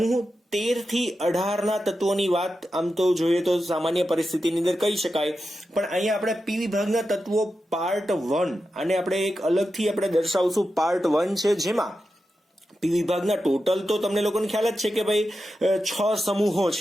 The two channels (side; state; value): both; normal; correlation 0.90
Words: 13 થી 18 ના તત્વોની વાત આમ તો જોઈએ તો સામાન્ય પરિસ્થિતિની અંદર કહી શકાય, પણ અહીંયા આપણે પી વિભાગના તત્વો પાર્ટ 1 અને આપણે એક અલગથી આપણે દર્શાવશું પાર્ટ 1 છે, જેમાં પી વિભાગના ટોટલ તો તમને લોકોને ખ્યાલ જ છે કે ભાઈ 6 સમૂહો